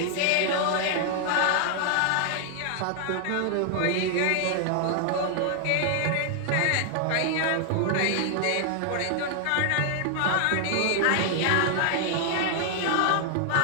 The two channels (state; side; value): different; both; correlation 0.00